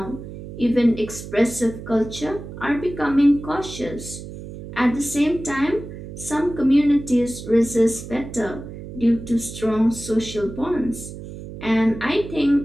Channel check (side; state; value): right; noise; hum, 11 dB below the sound